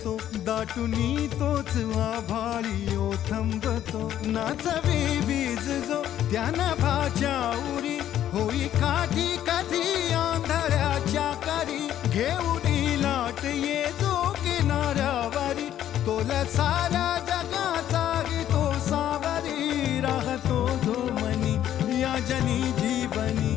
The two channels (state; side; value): quieter; right; 11.3 dB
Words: दाटुनी तोच आभाळी ओथंबतो नाचवे वीज जो त्यानं भाच्या उरी होई काठी कधी आंधळ्याच्या करी घेऊनी लाट ये जो किनाऱ्यावरी तोला सारा जगाचा तो सावरी राहतो जो मनी या जनी